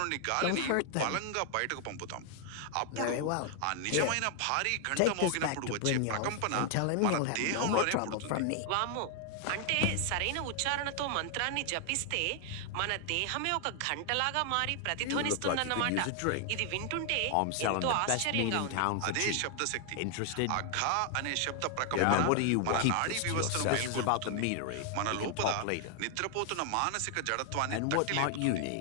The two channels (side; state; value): both; different; correlation 0.00